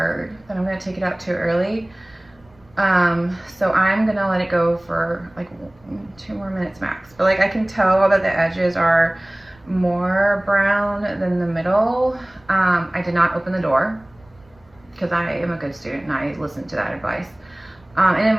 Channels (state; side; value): noise; right; rumble, 30 dB below the sound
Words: that I'm gonna take it out too early. So I'm gonna let it go for like 2 more minutes max. But like I can tell that the edges are more brown than the middle. I did not open the door because I am a good student and I listened to that advice. And